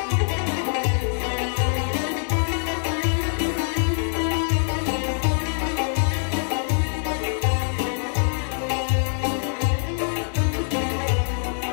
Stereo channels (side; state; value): right; silent; digital silence